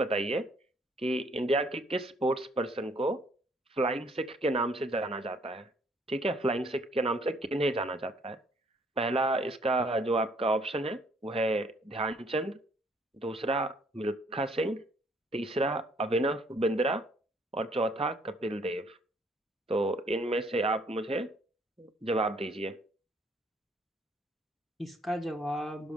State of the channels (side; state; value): both; normal; correlation 0.64